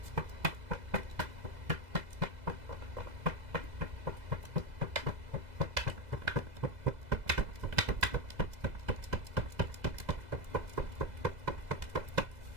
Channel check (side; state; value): left; late; 2.0 ms